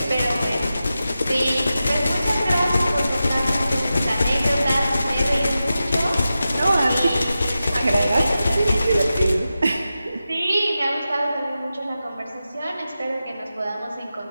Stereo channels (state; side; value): inverted; both; correlation -0.92